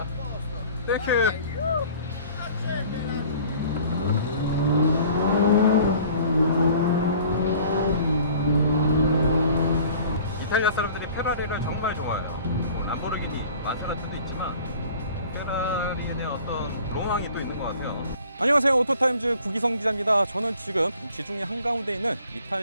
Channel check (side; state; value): both; inverted; correlation -0.50